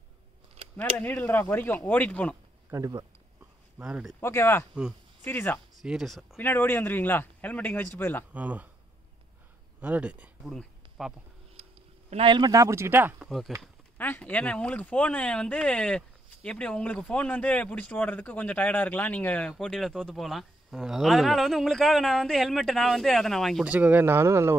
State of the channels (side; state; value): both; normal; correlation 0.77